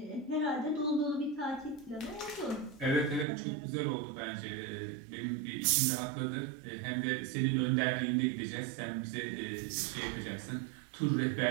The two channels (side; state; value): left; drops out; at 3.2 s